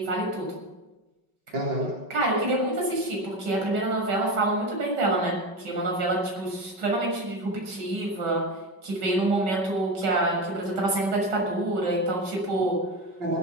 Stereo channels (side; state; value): left; late; 5.3 ms